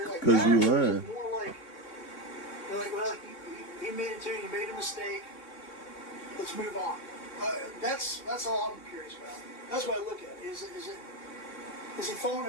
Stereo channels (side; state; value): right; late; 3.6 ms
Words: like, Cause you "No," or is lying. it more like, they're like, well, he made it too, he made a mistake, let's move on. That's all I'm curious about. That's what I look at. Is he falling on